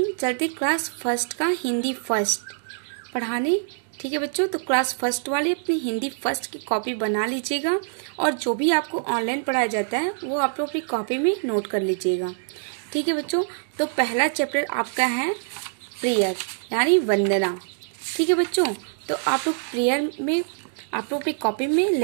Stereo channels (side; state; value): left; silent; digital silence